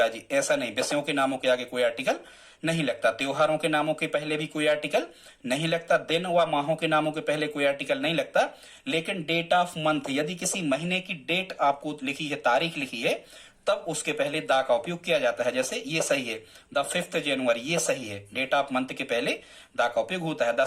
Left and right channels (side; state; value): both; identical; correlation 1.00